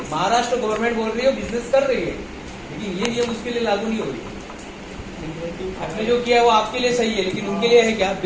महाराष्ट्र गवर्नमेंट बोल रही है बिजनेस कर रही है, लेकिन ये नियम उसके लिए लागू नहीं हो रही। आपने जो किया है वो आपके लिए सही है, लेकिन उनके लिए है क्या?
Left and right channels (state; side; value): identical; both; correlation 1.00